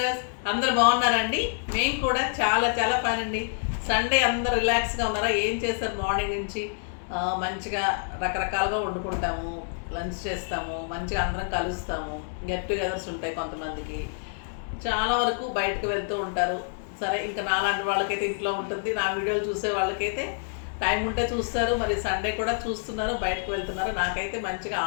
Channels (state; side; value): silent; right; 60 dB below the other